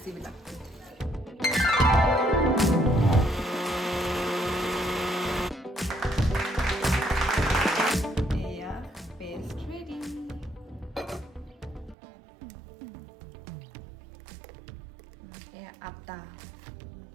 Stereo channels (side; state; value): left; drops out; at 12.0 s